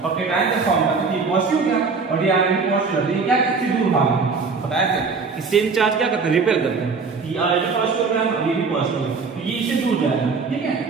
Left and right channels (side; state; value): left; quieter; 4.7 dB